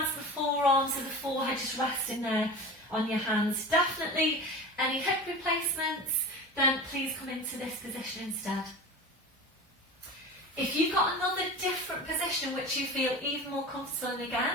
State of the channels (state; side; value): normal; both; correlation 0.32